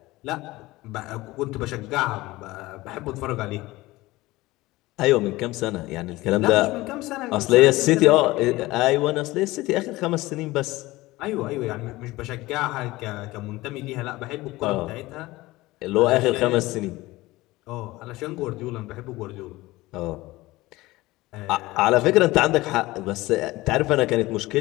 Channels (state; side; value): quieter; right; 19.3 dB